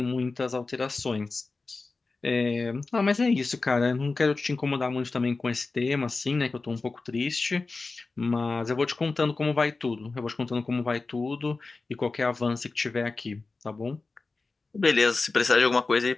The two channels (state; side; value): quieter; right; 3.8 dB